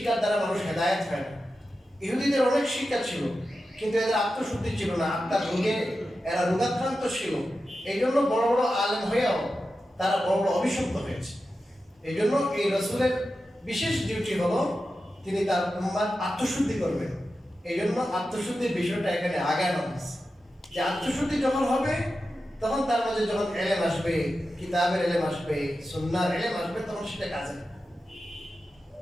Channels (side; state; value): both; normal; correlation 0.91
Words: দ্বারা মানুষ হেদায়েত হয় না। ইহুদিদের অনেক শিক্ষা ছিল, কিন্তু এদের আত্মশুদ্ধি ছিল না, আত্মার রোগে এরা রোগাক্রান্ত ছিল। এই জন্য বড় বড় আলেম হয়েও তারা বড় বড় অভিশপ্ত হয়েছে। এই জন্য এই রাসূলের বিশেষ ডিউটি হলো তিনি তার উম্মার আত্মশুদ্ধি করবেন। এই জন্য আত্মশুদ্ধির বিষয়টা এখানে আগানো হয়েছে, যে আত্মশুদ্ধি যখন হবে তখন তার মাঝে যখন এলেম আসবে, কিতাবের এলেম আসবে, সুন্নাহর এলেম আসবে, তখন সেটা কাজে